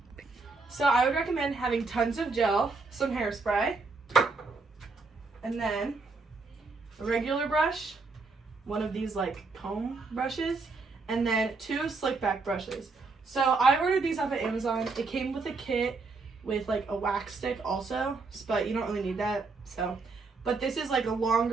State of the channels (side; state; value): left; quieter; 4.0 dB